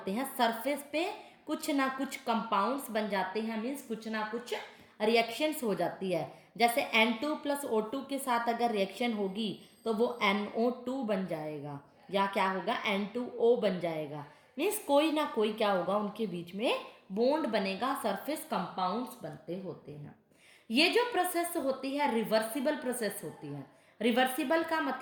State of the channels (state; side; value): identical; both; correlation 1.00